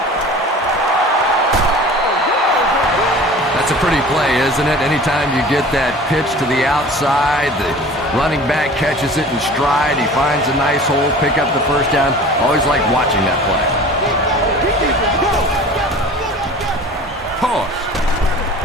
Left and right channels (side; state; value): both; normal; correlation 0.41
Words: That's a pretty play, isn't it? Anytime you get that pitch to the outside, the running back catches it in stride, he finds a nice hole, pick up the first down. Always like watching that play. Toss.